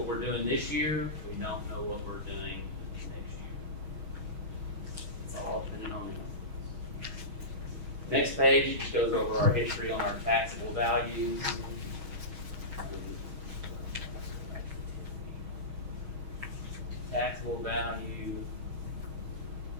we're doing this year, we don't know what we're doing next year. It's all depending on them. Next page just goes over our history on our taxable values. Taxable value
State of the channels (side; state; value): left; late; 6.3 ms